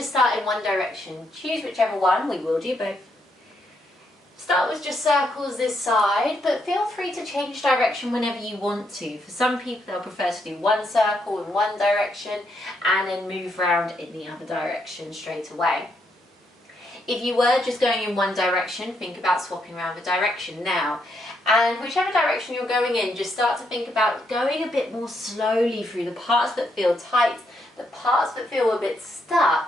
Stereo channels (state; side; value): normal; both; correlation 0.77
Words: start in one direction. Choose whichever one, we will do both. Start with just circles this side, but feel free to change direction whenever you want to. For some people, they'll prefer to do one circle in one direction and then move around in the other direction straight away. If you were just going in one direction, think about swapping around the direction now. And whichever direction you're going in, just start to think about going a bit more slowly through the parts that feel tight, the parts that feel a bit